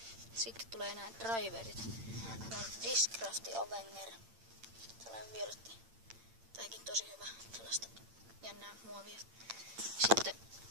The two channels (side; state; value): left; late; 8.8 ms